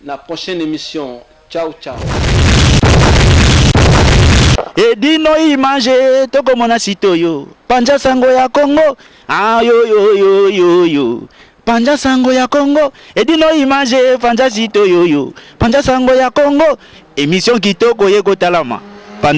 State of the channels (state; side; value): identical; both; correlation 1.00